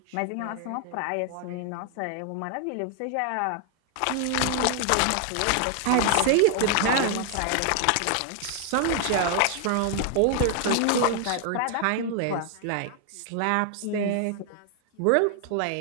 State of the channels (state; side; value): different; both; correlation 0.00